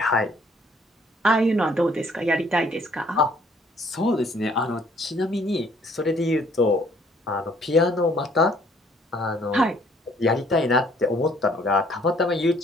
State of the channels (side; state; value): both; normal; correlation 0.62